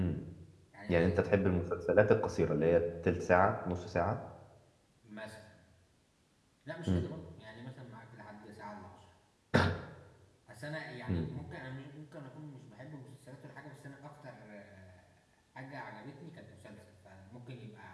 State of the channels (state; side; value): identical; both; correlation 1.00